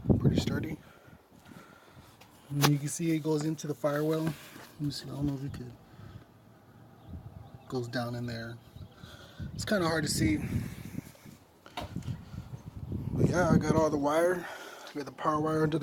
Pretty sturdy. And you can see it goes into the firewall. Let me see, I don't know if you could. Goes down in there. It's kind of hard to see. But yeah, I got all the wire. I got the power wire under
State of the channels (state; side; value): identical; both; correlation 1.00